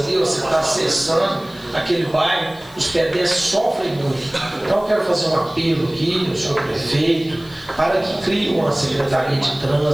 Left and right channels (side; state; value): left; noise; hiss, 24 dB below the sound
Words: você está acessando aquele bairro, os pedestres sofrem muito. Então eu quero fazer um apelo aqui ao senhor prefeito, para que crie uma secretaria de